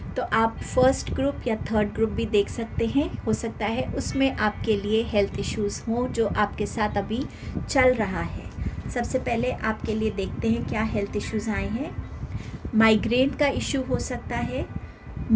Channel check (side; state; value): both; identical; correlation 1.00